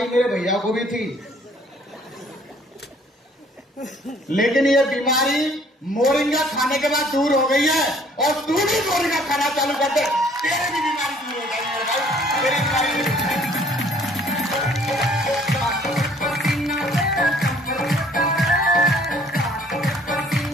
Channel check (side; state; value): both; normal; correlation 0.58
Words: मेरे भैया को भी थी, लेकिन ये बीमारी मोरिंगा खाने के बाद दूर हो गई है, और तू भी मोरिंगा खाना चालू कर दे, तेरी भी बीमारी दूर हो जाएगी मेरे भाई, तेरी बीमारी।